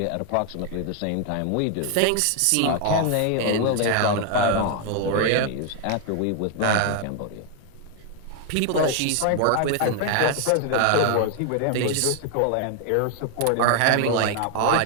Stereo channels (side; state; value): both; different; correlation 0.00